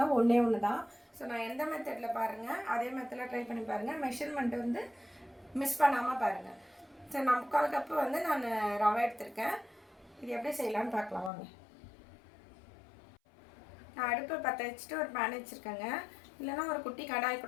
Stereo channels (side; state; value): right; drops out; at 11.3 s